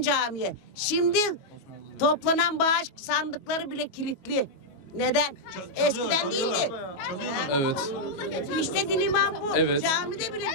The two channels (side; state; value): right; late; 22 ms